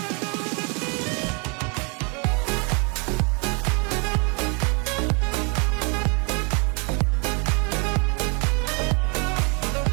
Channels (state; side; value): quieter; left; 34.0 dB